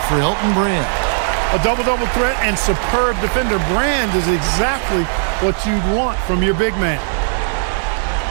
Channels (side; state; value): left; silent; 60 dB below the other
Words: for Elton Brand. A double-double threat and superb defender. Brand is exactly what you'd want from your big man.